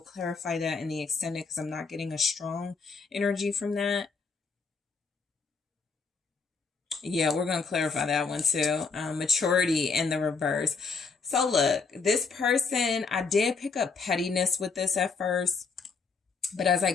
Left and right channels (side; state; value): right; quieter; 4.8 dB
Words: clarify that in the extended because I'm not getting a strong energy from that. Yeah, we're going to clarify that one too. Maturity in the reverse. So look, this person, I did pick up pettiness with this at first, but as I